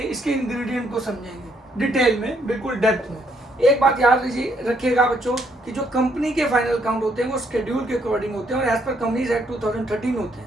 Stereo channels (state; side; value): normal; both; correlation 0.71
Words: इसके इंग्रेडिएंट को समझेंगे डिटेल में, बिल्कुल डेप्थ में। एक बात याद रखिएगा बच्चों कि जो कंपनी के फाइनल अकाउंट होते हैं वो शेड्यूल के अकॉर्डिंग होते हैं और एज पर कंपनीज एक्ट 2013 होते